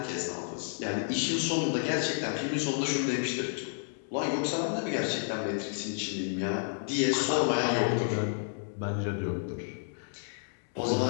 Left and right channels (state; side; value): silent; right; digital silence